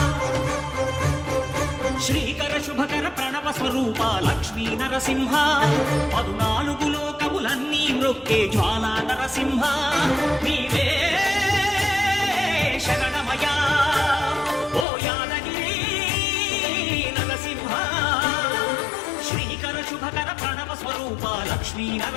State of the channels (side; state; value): right; drops out; at 14.9 s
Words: శ్రీకర శుభకర ప్రణవ స్వరూప లక్ష్మీ నరసింహ 14 లోకములన్నీ మ్రొక్కే జ్వాలా నరసింహ నీవే శరణమయా ఓ యాదగిరి నరసింహ శ్రీకర శుభకర ప్రణవ స్వరూప లక్ష్మీ